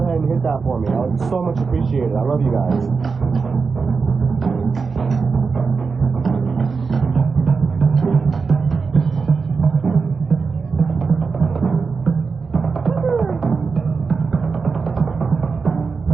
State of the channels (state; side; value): quieter; left; 4.9 dB